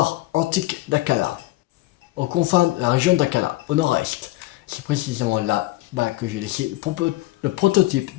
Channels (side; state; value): right; quieter; 18.5 dB